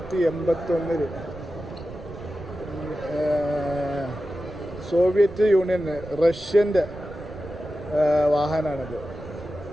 സോവിയറ്റ് യൂണിയന് റഷ്യൻ്റെ വാഹനമാണിത്.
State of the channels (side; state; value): right; noise; rumble, 15 dB below the sound